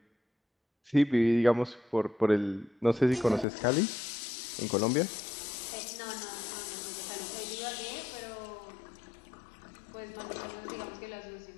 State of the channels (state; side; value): drops out; right; at 3.5 s